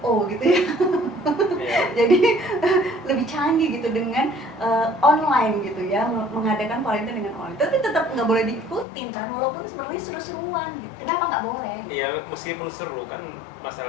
gitu ya. Jadi lebih canggih gitu dengan online gitu ya, mengadakan Valentine dengan online. Tapi tetap nggak boleh diikutin kan, walaupun sebenarnya seru-seruan gitu. Kenapa nggak boleh? Iya, meskipun seru kan,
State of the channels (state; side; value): drops out; right; at 8.8 s